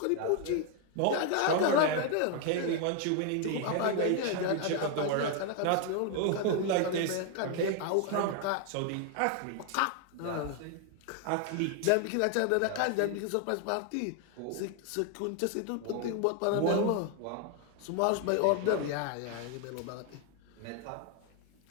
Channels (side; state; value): both; different; correlation 0.00